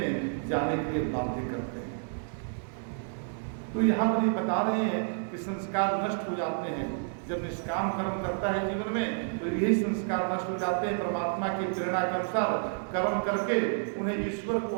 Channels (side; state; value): left; silent; digital silence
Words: जाने के लिए बाध्य करते हैं। तो यहाँ पर ये बता रहे हैं कि संस्कार नष्ट हो जाते हैं जब निष्काम कर्म करता है जीवन में, तो यही संस्कार नष्ट हो जाते हैं। परमात्मा की प्रेरणा के अनुसार कर्म करके उन्हें ईश्वर को